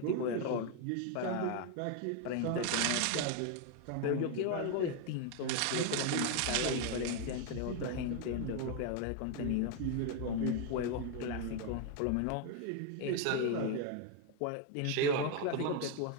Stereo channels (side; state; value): both; different; correlation 0.01